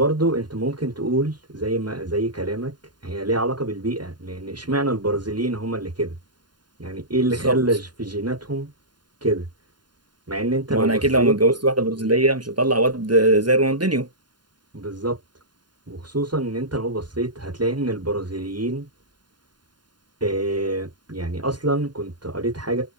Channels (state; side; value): late; left; 0.71 ms